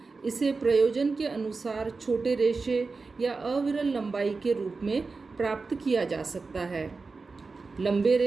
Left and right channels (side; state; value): left; quieter; 4.2 dB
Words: इसे प्रयोजन के अनुसार छोटे रेशे या अविरल लंबाई के रूप में प्राप्त किया जा सकता है। लंबे